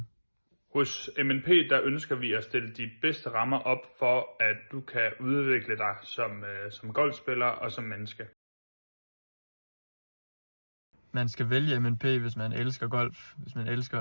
Hos MNP der ønsker vi at stille de bedste rammer op for, at du kan udvikle dig som golfspiller og som menneske. Man skal vælge MNP, hvis man elsker golf, hvis man elsker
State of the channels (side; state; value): both; inverted; correlation -1.00